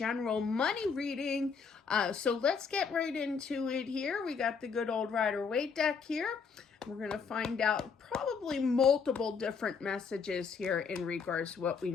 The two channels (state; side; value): quieter; right; 5.7 dB